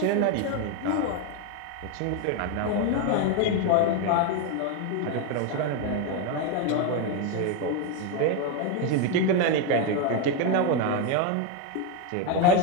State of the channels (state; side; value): different; both; correlation 0.02